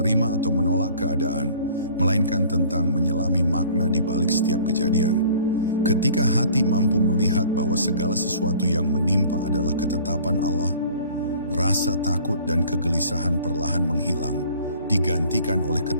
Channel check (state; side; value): inverted; both; correlation -0.50